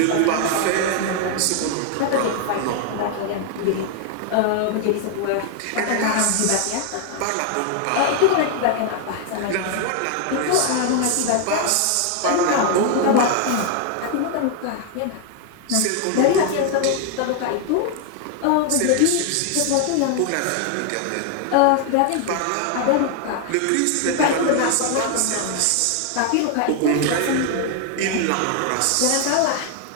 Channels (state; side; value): different; both; correlation 0.00